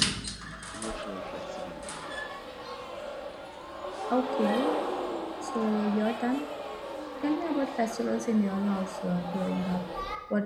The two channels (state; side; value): identical; both; correlation 1.00